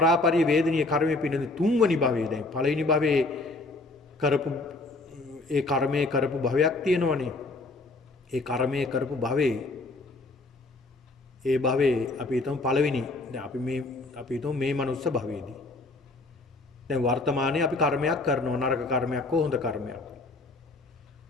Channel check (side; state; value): right; quieter; 3.1 dB